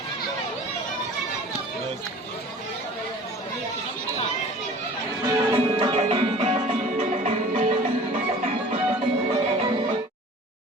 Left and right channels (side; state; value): both; normal; correlation 0.45